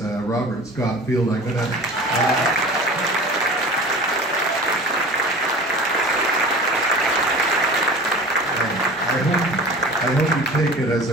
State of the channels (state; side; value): normal; both; correlation 0.39